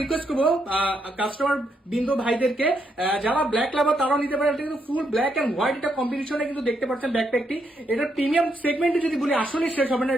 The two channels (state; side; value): normal; both; correlation 0.78